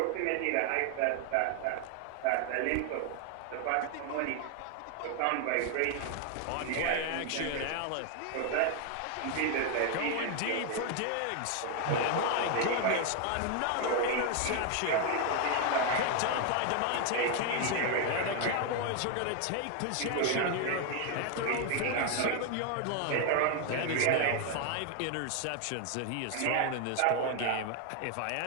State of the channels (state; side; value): different; both; correlation 0.00